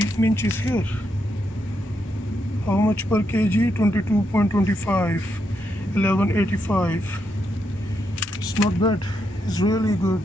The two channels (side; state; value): both; normal; correlation 0.81